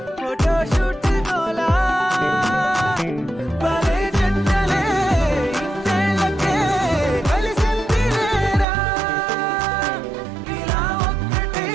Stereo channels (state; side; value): drops out; left; at 8.7 s